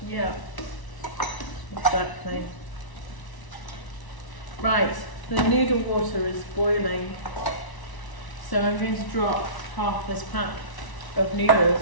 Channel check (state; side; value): late; right; 1.0 ms